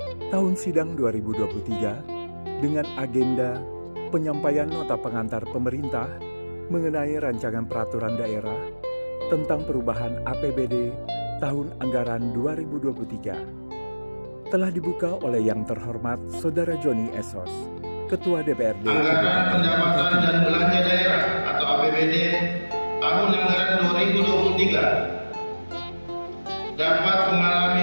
tahun sidang 2023 dengan agenda penyampaian nota pengantar pemerintah mengenai rancangan peraturan daerah tentang perubahan APBD tahun anggaran 2023 telah dibuka oleh yang terhormat Saudara Joni Esos, Ketua DPRD. Anggaran pendapatan dan belanja daerah atau APBD tahun anggaran 2023 dapat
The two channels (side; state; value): both; inverted; correlation -1.00